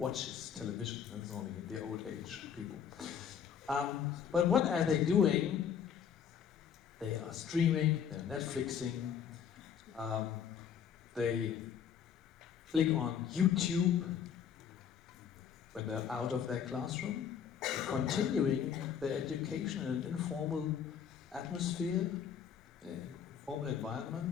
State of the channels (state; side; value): quieter; right; 8.1 dB